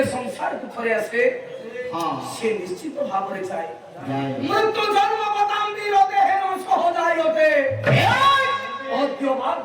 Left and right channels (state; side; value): identical; both; correlation 1.00